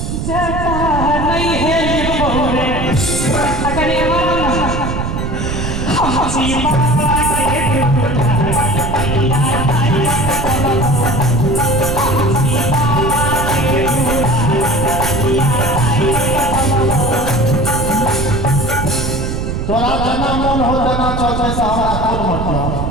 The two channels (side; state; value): right; noise; rumble, 3 dB below the sound